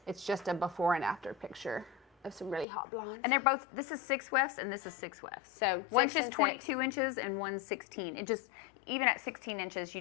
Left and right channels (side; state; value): right; drops out; at 2.7 s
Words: It's just a before and after picture of some really hot blondes. And they're both, this is 6 wefts and this is 6 wefts. So one's just 22 inches and one's 16. It just, even at 16 inches, we